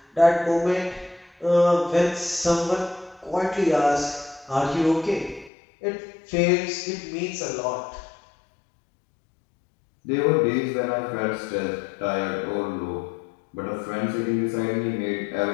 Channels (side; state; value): right; drops out; at 5.5 s